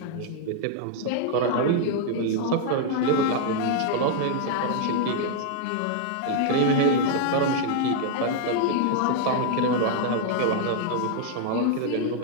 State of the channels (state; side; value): different; both; correlation 0.00